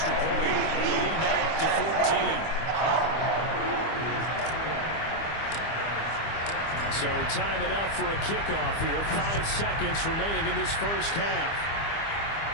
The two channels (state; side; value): late; right; 25 ms